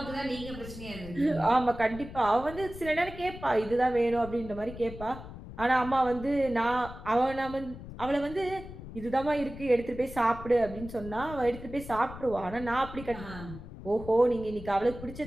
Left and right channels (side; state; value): left; noise; rumble, 13 dB below the sound